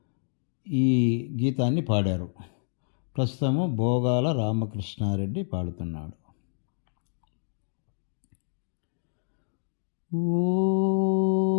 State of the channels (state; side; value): silent; right; digital silence